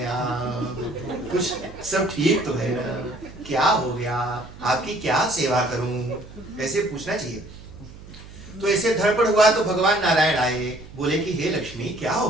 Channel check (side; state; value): right; noise; hum, 17 dB below the sound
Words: आप? कुछ सब ठीक तो है ना? क्या हो गया? आपकी क्या सेवा करूं? ऐसे पूछना चाहिए। तो ऐसे धड़पड़ हुआ तो भगवान नारायण आए, बोले कि हे लक्ष्मी क्या हो